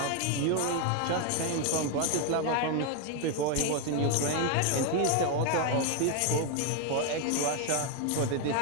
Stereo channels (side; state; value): both; different; correlation 0.01